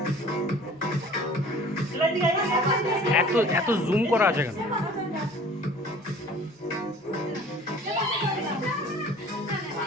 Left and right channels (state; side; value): normal; both; correlation 0.48